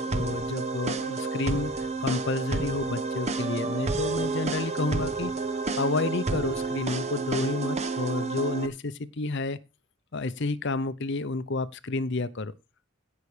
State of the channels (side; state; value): both; normal; correlation 0.36